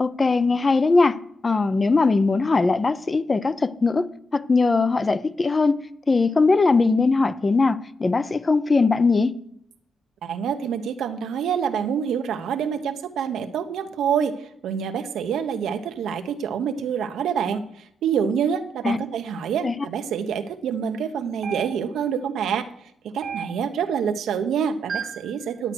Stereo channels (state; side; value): normal; both; correlation 0.81